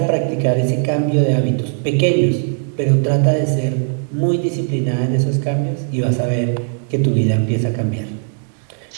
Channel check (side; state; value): left; silent; 67 dB below the other